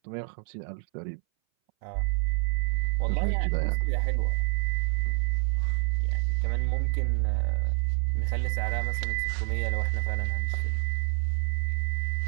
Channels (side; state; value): left; silent; 60 dB below the other